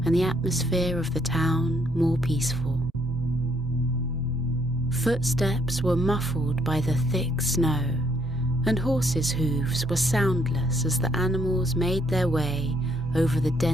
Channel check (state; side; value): normal; both; correlation 0.69